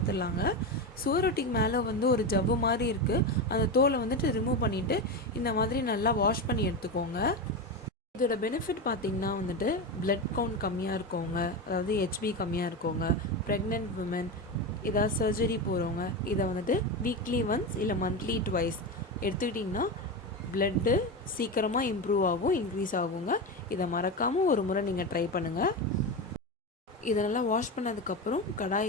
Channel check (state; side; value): normal; both; correlation 0.18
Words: சுவரொட்டிக்கு மேலே ஒரு ஜவ்வு மாதிரி இருக்குது. அந்த தோலை ரிமூவ் பண்ணிவிட்டு இந்த மாதிரி நல்லா வாஷ் பண்ணி எடுத்துக்கோங்க. இதோட பெனிஃபிட் பார்த்திங்கன்னா பிளட் கவுண்ட் கம்மியாக இருக்கவங்க, அதாவது ஹெச்பி கம்மியாக இருக்கவங்க, ப்ரெக்னென்ட் விமன், ஏதாவது சர்ஜரி போகிறவங்க இதை வீக்லி ஒன்ஸ் இல்லை மந்த்லி ட்வைஸ் எடுத்துக்கிட்டிங்கன்னா பிளட்டு சீக்கிரமாக இம்ப்ரூவ் ஆகும், இன்க்ரீஸ் ஆகுங்க. இதை மறக்காமல் ஒரு முறை நீங்கள் ட்ரை பண்ணுங்கள். இதை நல்லா வாஷ் பண்ணதுக்கப்புறம்